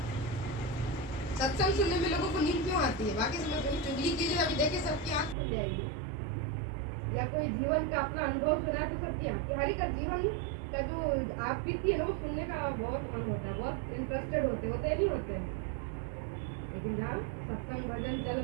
सत्संग सुनने में लोगों को नींद क्यों आती है? बाकी समय कभी चुगली कीजिए, अभी देखिए सबकी आंख खुल जाएगी। या कोई जीवन का अपना अनुभव सुना है तो सबकी आंख, हर एक का जीवन का जो आप बीती है ना वो सुनने का बहुत मन होता है, बहुत इंटरेस्टेड होते नहीं होते हैं। लेकिन जहाँ सत्संग भजन चल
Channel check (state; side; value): drops out; left; at 5.4 s